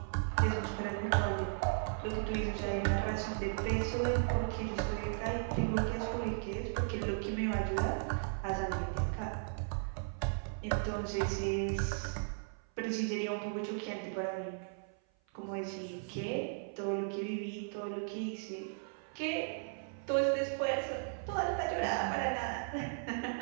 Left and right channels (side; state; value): left; silent; 54 dB below the other